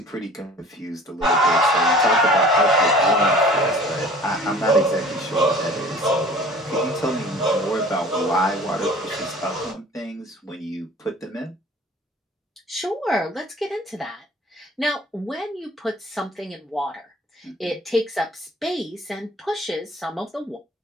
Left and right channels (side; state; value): both; normal; correlation 0.47